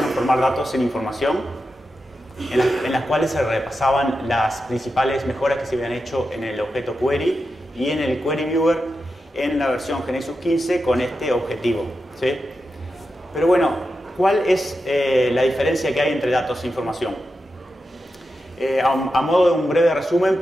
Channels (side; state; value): both; normal; correlation 0.89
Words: datos en información?, en las cuales se repasaban las principales mejoras que se habían hecho en el objeto query y en el query viewer en la versión GeneXus 15 con este objetivo, ¿sí? Pero bueno, ¿cuál es la diferencia que hay entre datos e información? A modo de un breve resumen,